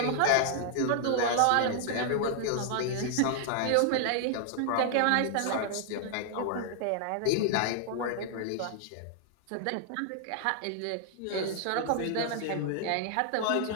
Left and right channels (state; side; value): different; both; correlation -0.01